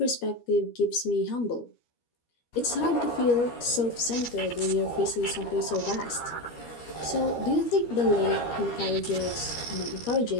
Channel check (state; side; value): late; right; 13 ms